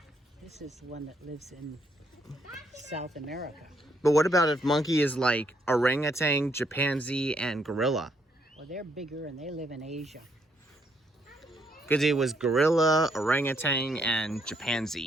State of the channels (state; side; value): normal; both; correlation 0.73